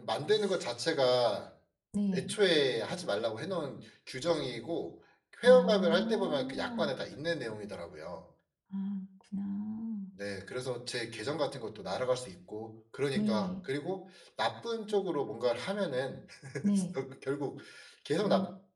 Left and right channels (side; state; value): both; identical; correlation 1.00